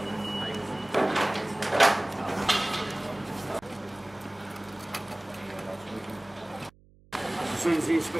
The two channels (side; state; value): right; noise; hum, 27 dB below the sound